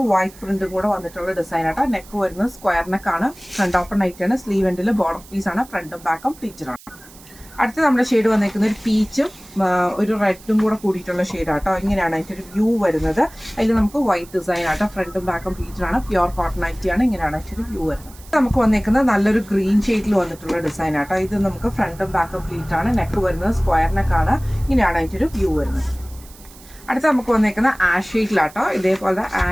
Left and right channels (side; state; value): right; noise; hiss, 22 dB below the sound